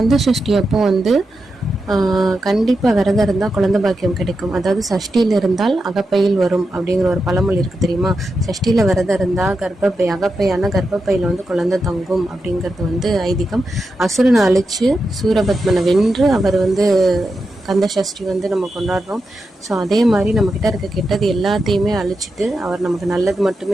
சஷ்டி அப்போ வந்து கண்டிப்பாக விரதம் இருந்தால் குழந்தை பாக்கியம் கிடைக்கும். அதாவது சஷ்டியில் இருந்தால் அகப்பையில் வரும் அப்படிங்கிற ஒரு பழமொழி இருக்குது தெரியுமா? சஷ்டியில் விரதம் இருந்தால் அகப்பையான கர்ப்பப்பையில் வந்து குழந்தை தங்கும் அப்படிங்கிறது வந்து ஐதீகம். அசுரனை அழித்து சூரபத்மனை வென்று அவர் வந்து கந்த சஷ்டி வந்து நம்ம கொண்டாடுறோம். ஸோ அதே மாதிரி நம்மக்கிட்ட இருக்க கெட்டது எல்லாத்தையுமே அழிச்சிட்டு அவர் நமக்கு நல்லது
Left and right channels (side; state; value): both; normal; correlation 0.88